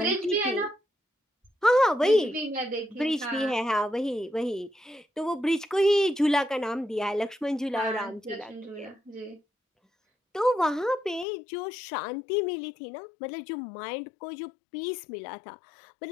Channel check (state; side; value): drops out; right; at 11.2 s